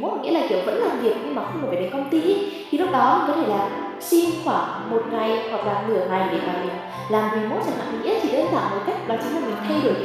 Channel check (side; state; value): both; identical; correlation 1.00